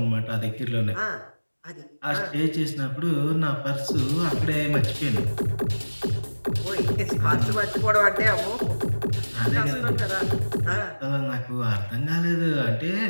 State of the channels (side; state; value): both; inverted; correlation -1.00